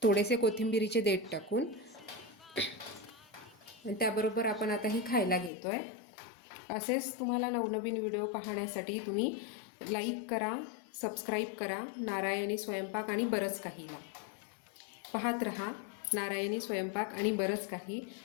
थोडेसे कोथिंबिरीचे देठ टाकून. आणि त्याबरोबर आपण आता ही खायला घेतो आहे. असेच तुम्हाला नवनवीन व्हिडिओ पाहण्यासाठी तुम्ही लाईक करा, सबस्क्राईब करा नारायणी स्वयंपाक आणि बरंच काहीला. पाहत रहा नारायणी स्वयंपाक आणि बरंच काही.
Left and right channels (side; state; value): right; drops out; at 5.5 s